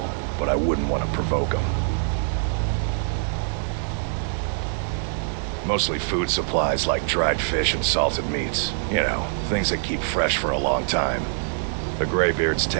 but I wouldn't want to provoke them. Mostly food supplies like dried fish and salted meats. You know, things that keep fresh for a long time. The Greybeards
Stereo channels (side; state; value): left; silent; digital silence